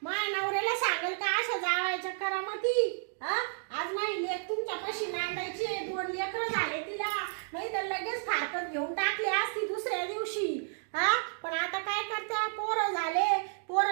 माझ्या नवऱ्याला सांगेल का अशा जावायच्या करामती आज माझी लेक तुमच्या कशी नांदायची 2 लेकरं झाले तिला नाही तर लगेच फारकत घेऊन टाकली असती दुसऱ्या दिवशी पण आता काय करते पोरं झाले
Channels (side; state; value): left; silent; digital silence